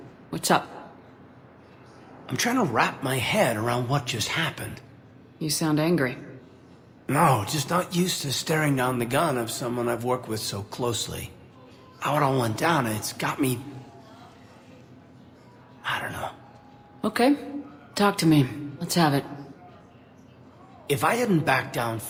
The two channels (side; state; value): both; identical; correlation 1.00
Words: What's up? I'm trying to wrap my head around what just happened. You sound angry. No, just not used to staring down the gun of someone I've worked with so closely. How it all went down, it's got me... I don't know. Okay. Talk to me. Let's have it. If I hadn't backed down